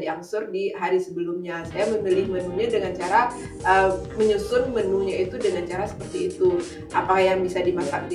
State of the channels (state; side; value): identical; both; correlation 1.00